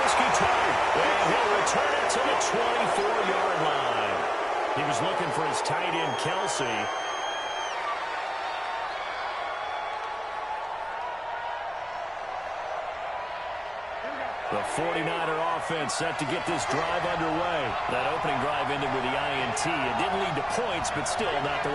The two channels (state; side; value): identical; both; correlation 1.00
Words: Tartt. And he'll return it to the 24-yard line. He was looking for his tight end, Kelsey. The 49er offense set to get this drive underway. That opening drive ended with the INT. It didn't lead to points, but still not the